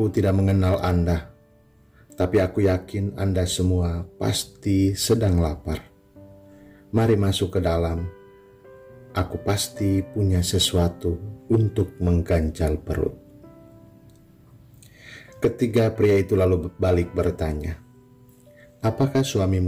tidak mengenal Anda, tapi aku yakin Anda semua pasti sedang lapar. Mari masuk ke dalam. Aku pasti punya sesuatu untuk mengganjal perut." Ketiga pria itu lalu balik bertanya, "Apakah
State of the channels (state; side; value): identical; both; correlation 1.00